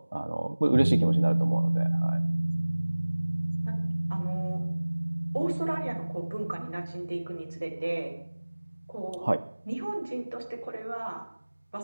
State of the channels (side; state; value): both; inverted; correlation -1.00